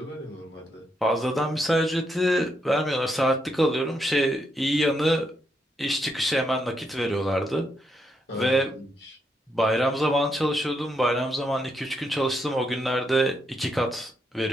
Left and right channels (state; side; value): normal; both; correlation 0.79